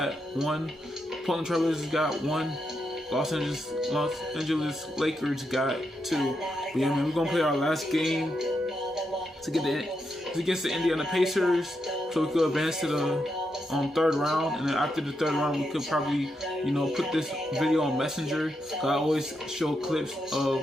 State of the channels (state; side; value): normal; both; correlation 0.83